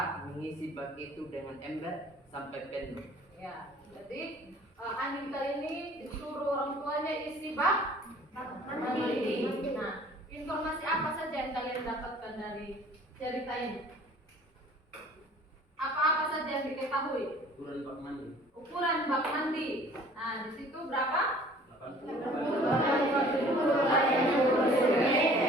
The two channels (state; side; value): normal; both; correlation 0.51